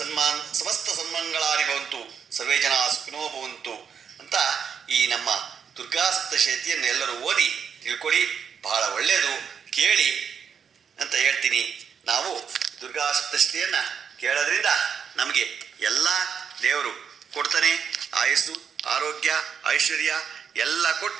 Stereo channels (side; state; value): left; quieter; 7.0 dB